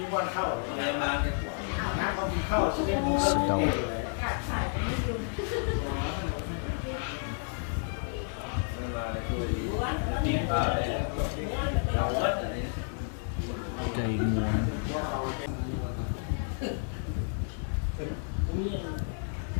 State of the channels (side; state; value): right; silent; 56 dB below the other